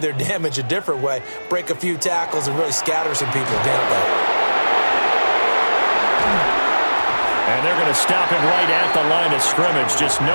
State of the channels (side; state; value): both; inverted; correlation -1.00